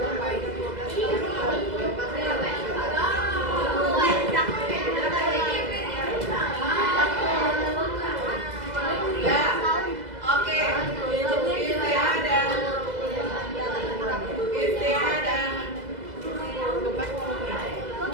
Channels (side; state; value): left; late; 2.0 ms